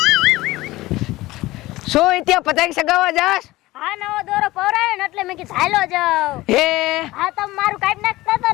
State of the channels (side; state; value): right; quieter; 18.4 dB